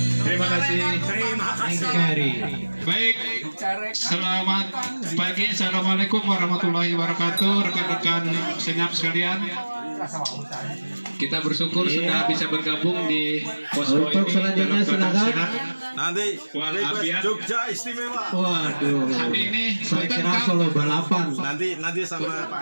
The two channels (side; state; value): both; inverted; correlation -1.00